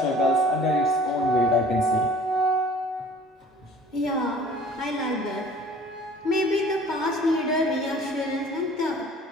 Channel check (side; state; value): both; normal; correlation 0.49